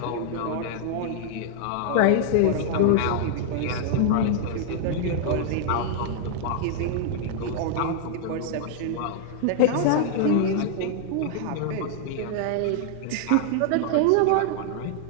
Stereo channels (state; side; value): different; both; correlation 0.00